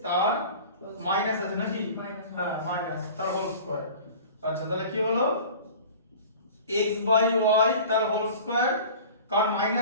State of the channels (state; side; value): inverted; both; correlation -0.41